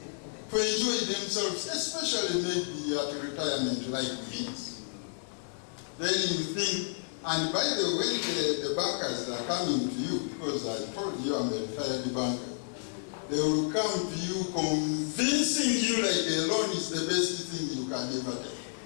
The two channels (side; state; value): right; silent; digital silence